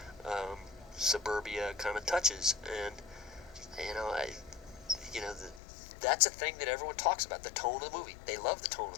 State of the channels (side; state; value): right; drops out; at 5.6 s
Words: suburbia kind of touches. And that's a thing that everyone talks about, the tone of the movie. They love the tone